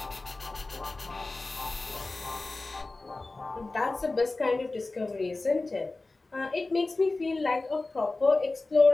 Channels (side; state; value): right; quieter; 3.3 dB